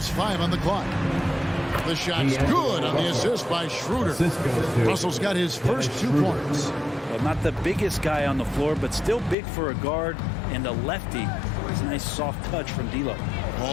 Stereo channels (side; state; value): right; drops out; at 9.3 s